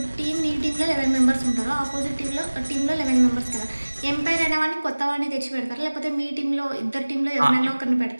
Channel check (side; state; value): both; inverted; correlation -1.00